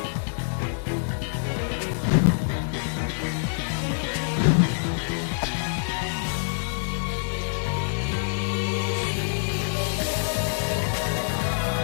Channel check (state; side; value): silent; right; digital silence